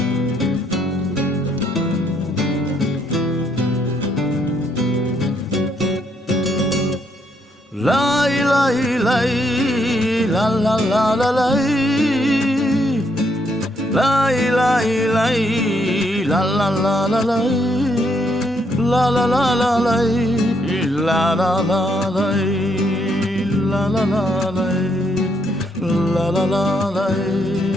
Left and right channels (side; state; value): both; normal; correlation 0.73